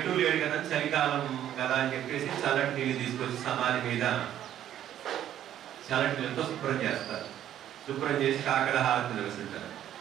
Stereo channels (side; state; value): left; quieter; 11.2 dB